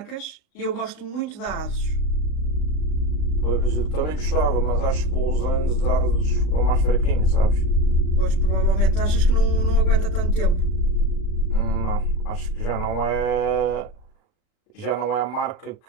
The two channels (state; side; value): late; right; 39 ms